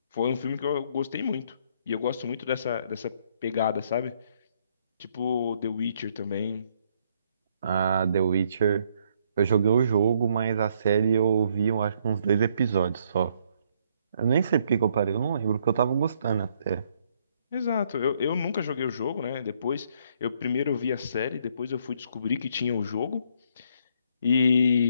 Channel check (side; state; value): both; inverted; correlation -0.69